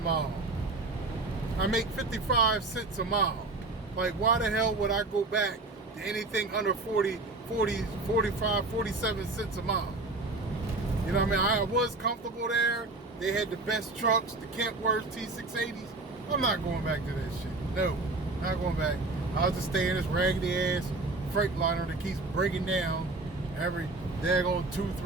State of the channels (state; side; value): quieter; left; 3.3 dB